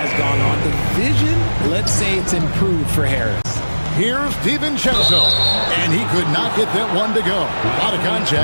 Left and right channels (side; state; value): both; inverted; correlation -1.00